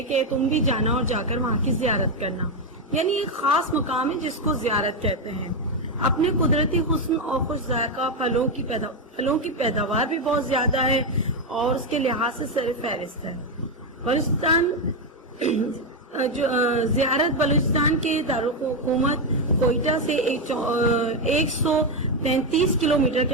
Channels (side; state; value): both; normal; correlation 0.06